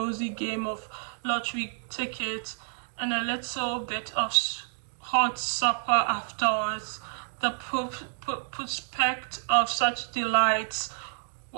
game of lottery tickets and a little bit of hot supper afterwards. The prospect of such delights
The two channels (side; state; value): left; silent; digital silence